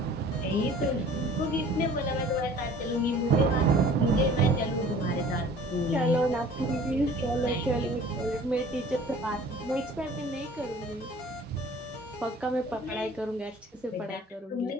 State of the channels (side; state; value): both; normal; correlation 0.48